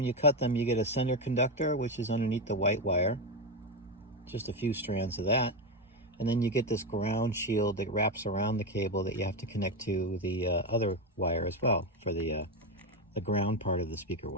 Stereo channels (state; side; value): normal; both; correlation 0.11